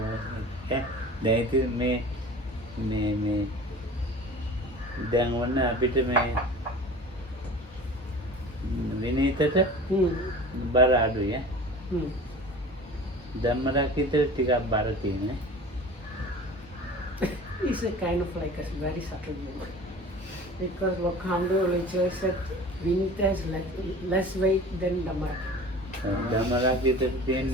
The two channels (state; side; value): normal; both; correlation 0.40